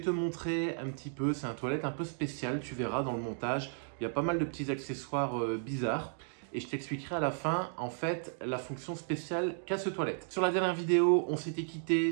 montrer un petit peu, c'est un toilette un peu spécial, tu verras dans le montage, il y a pas mal de petits accessoires bizarres. Et je t'expliquerai à la fin, en fait, la fonction spéciale qu'a ce toilette. Sur la dernière vidéo, on s'était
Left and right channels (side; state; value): left; silent; digital silence